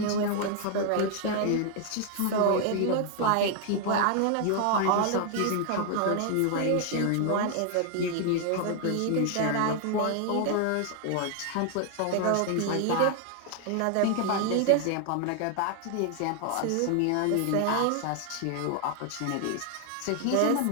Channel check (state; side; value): different; both; correlation 0.00